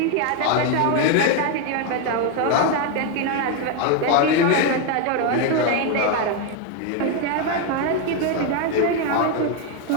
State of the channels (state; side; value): different; both; correlation 0.01